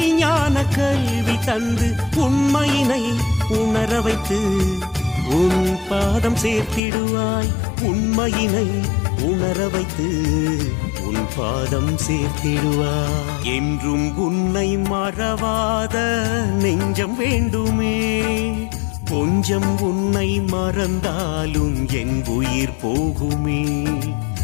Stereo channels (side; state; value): right; drops out; at 6.8 s